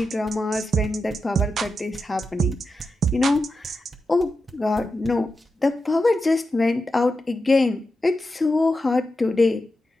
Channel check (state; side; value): normal; both; correlation 0.89